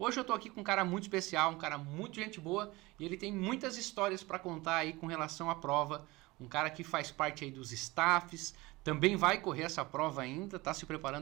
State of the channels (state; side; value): quieter; left; 21.6 dB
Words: eu estou aqui com um cara muito especial, um cara muito gente boa e ele tem muitas histórias para contar aí com relação à prova. Um cara que faz parte aí dos staffs, também vai correr essa prova ainda, está se